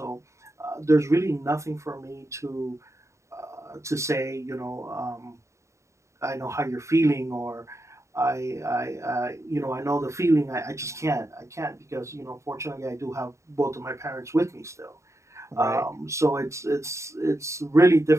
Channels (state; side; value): late; left; 0.14 ms